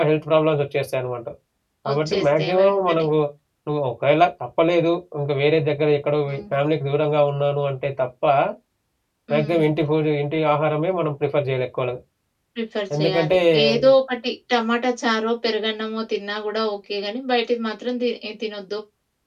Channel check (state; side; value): identical; both; correlation 1.00